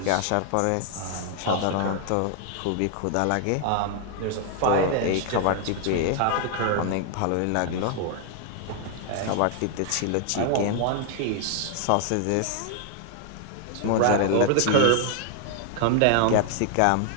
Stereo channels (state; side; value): different; both; correlation 0.00